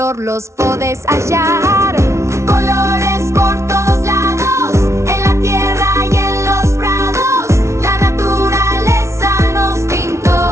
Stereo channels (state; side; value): late; left; 0.13 ms